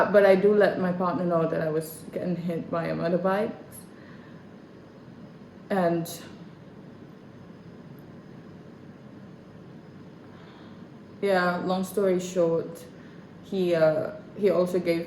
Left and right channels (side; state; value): both; identical; correlation 1.00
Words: I do let my partner know that I was getting hit by a motorbike. And yeah, long story short, he also gave